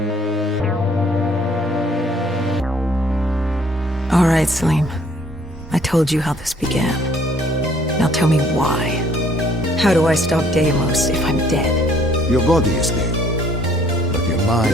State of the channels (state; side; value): normal; both; correlation 0.60